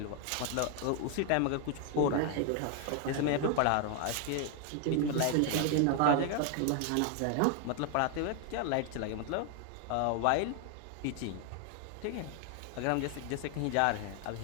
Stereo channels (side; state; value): both; different; correlation 0.00